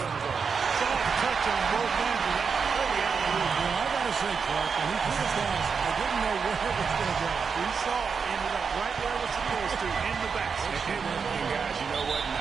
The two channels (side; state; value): left; quieter; 5.8 dB